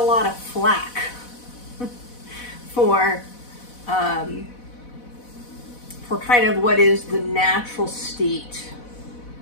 lot of flack for kind of what is the natural state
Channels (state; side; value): late; right; 4.1 ms